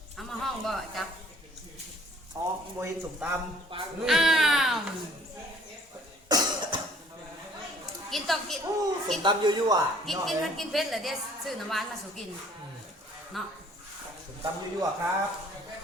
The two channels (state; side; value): normal; both; correlation 0.56